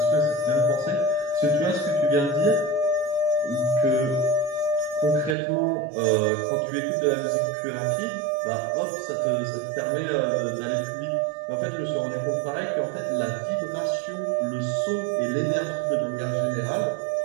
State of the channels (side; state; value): left; drops out; at 5.4 s